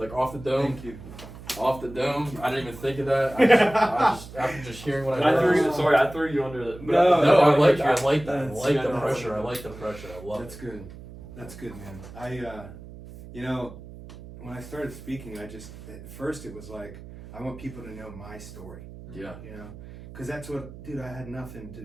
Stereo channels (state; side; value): noise; right; hum, 15 dB below the sound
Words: off the dome. Thank you. Off the dome. I didn't even think of that. I just after just hearing what I heard. I threw you under the. No, I like that. I like the pressure. I like the pressure. I love it. That's good. That's good, man. When I started speaking, at first it was like, I want people to know my story. Yeah. You know, because that's what, dude, I had nothing